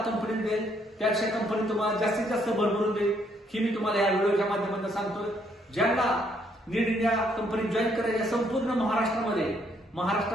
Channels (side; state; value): both; normal; correlation 0.70